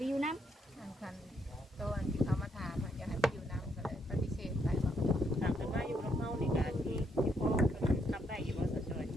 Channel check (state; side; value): normal; both; correlation 0.75